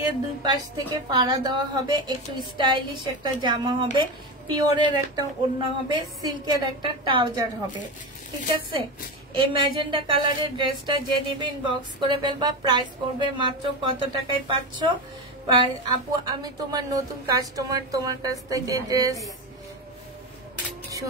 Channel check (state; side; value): normal; both; correlation 0.19